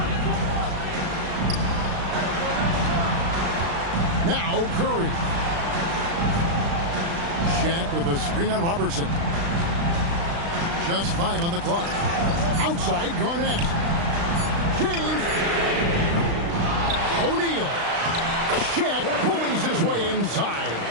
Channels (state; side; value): late; left; 35 ms